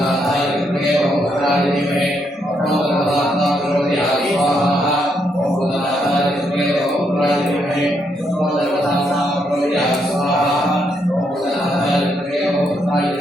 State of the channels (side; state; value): both; normal; correlation 0.76